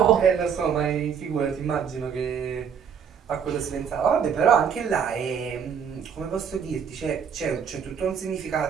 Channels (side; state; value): left; quieter; 7.4 dB